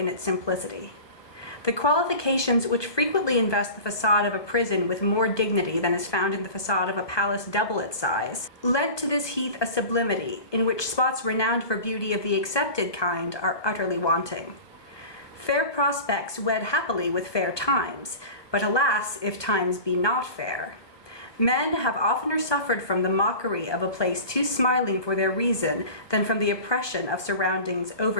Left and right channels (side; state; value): right; late; 1.2 ms